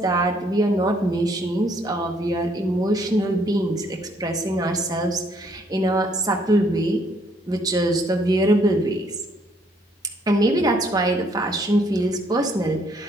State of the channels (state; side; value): normal; both; correlation 0.67